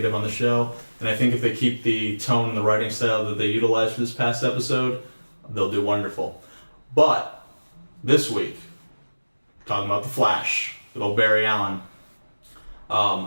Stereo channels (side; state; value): both; inverted; correlation -1.00